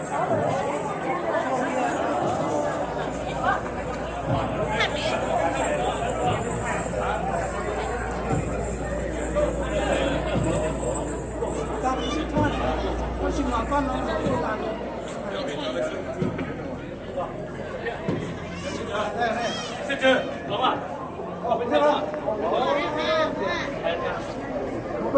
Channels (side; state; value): both; identical; correlation 1.00